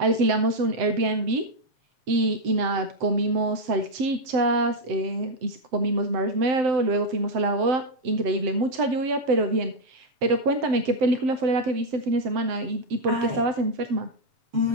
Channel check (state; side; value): late; left; 7.8 ms